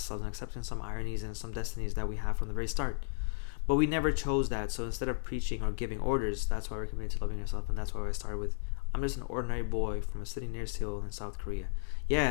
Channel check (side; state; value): right; silent; digital silence